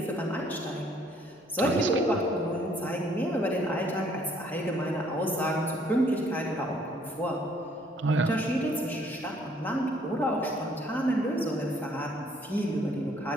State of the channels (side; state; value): both; normal; correlation 0.63